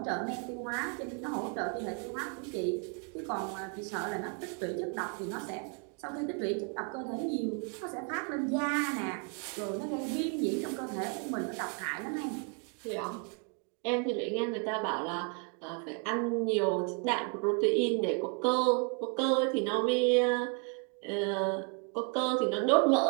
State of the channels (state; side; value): quieter; left; 36.8 dB